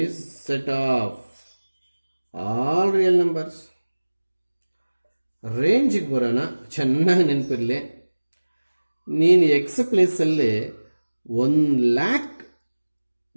set of all real numbers. ರೇಂಜಿಗೆ ಬರೋಣ. ಚೆನ್ನಾಗಿ ನೆನಪಿರಲಿ, ನೀನು ಎಕ್ಸ್ ಪ್ಲೇಸಲ್ಲಿ 1,00,000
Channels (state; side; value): inverted; both; correlation -1.00